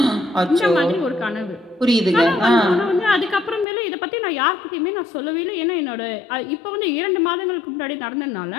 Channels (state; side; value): drops out; right; at 3.7 s